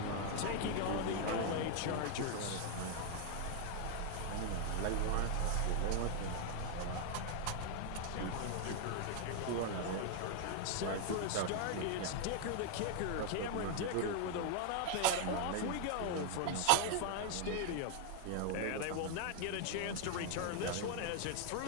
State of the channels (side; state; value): both; different; correlation 0.00